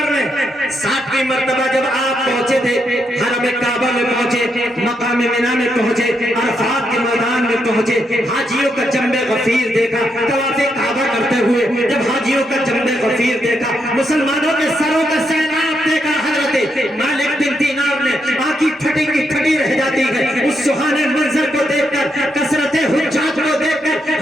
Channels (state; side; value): normal; both; correlation 0.80